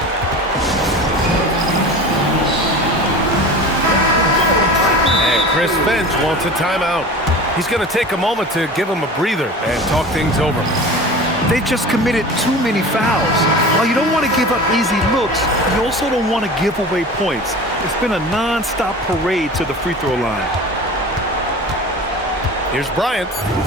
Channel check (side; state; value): both; normal; correlation 0.36